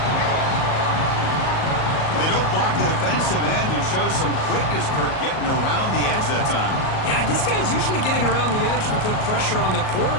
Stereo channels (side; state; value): right; late; 38 ms